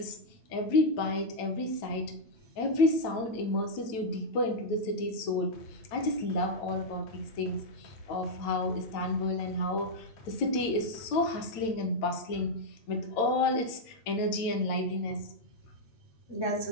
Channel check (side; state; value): right; late; 9.0 ms